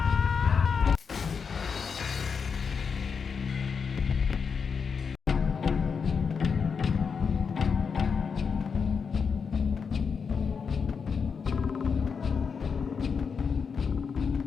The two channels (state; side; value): quieter; right; 5.9 dB